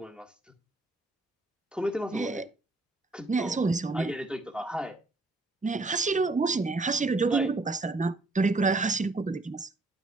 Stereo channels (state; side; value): quieter; left; 3.1 dB